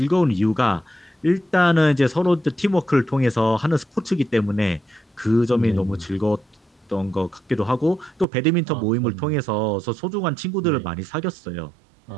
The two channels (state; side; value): drops out; left; at 8.2 s